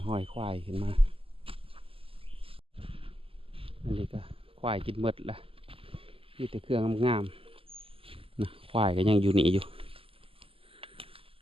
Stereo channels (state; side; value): late; left; 0.26 ms